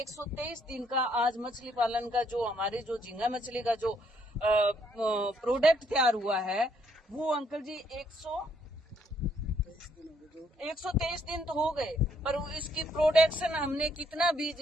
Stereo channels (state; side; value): normal; both; correlation 0.70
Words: 123 दिन का आज मछली पालन का जो हमारे जो झींगा मछली का जो प्रोडक्ट तैयार हुआ है वो अंकल जी 123 दिन तो हो गए, पर इसकी प्रोडक्शन हमने कितना बीज